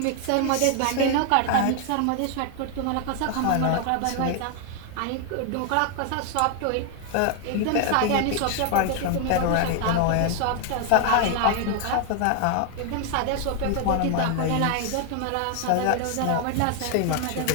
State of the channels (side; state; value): both; different; correlation 0.00